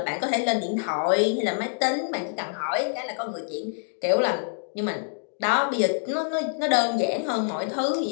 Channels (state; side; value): silent; right; digital silence